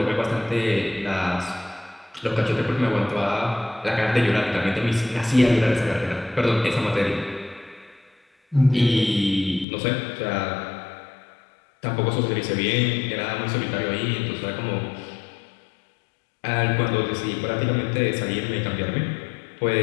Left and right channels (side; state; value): right; drops out; at 9.7 s